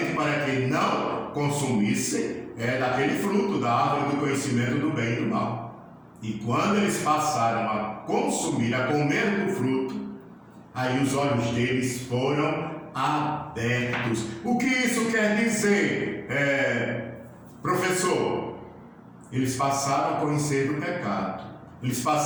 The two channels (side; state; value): both; identical; correlation 1.00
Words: para que não consumissem daquele fruto da árvore do conhecimento do bem e do mal. E quando eles passaram a consumir, a comer do fruto, aí os olhos deles foram abertos. O que isso quer dizer, professor? Eles passaram a conhecer do pecado, eles